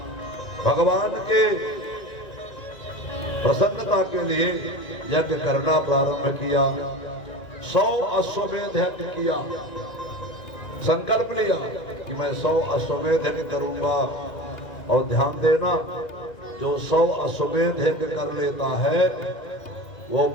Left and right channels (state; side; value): late; right; 1.9 ms